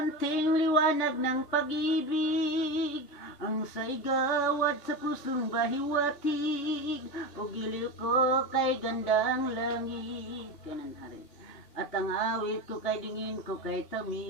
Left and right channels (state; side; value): late; right; 2.8 ms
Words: liwanag ng pag-ibig ang saigawad sa pusong bahiwatig, o giliw ko kay gandang langit. Kanan hari. At ang awit ko kay dingin ko kay